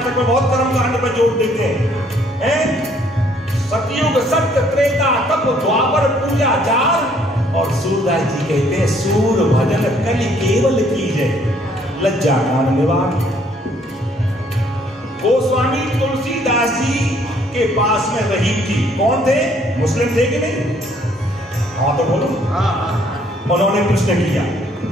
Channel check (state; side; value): normal; both; correlation 0.64